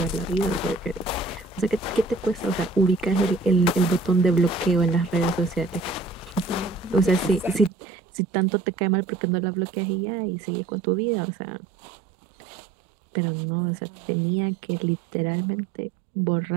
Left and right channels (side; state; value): left; drops out; at 7.7 s